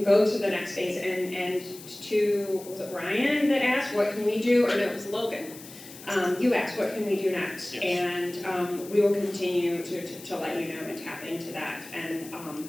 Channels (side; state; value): left; noise; hiss, 17 dB below the sound